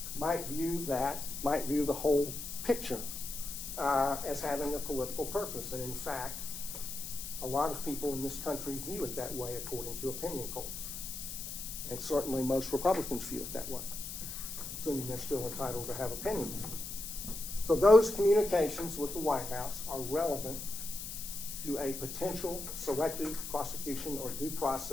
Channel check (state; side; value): noise; left; hiss, 7 dB below the sound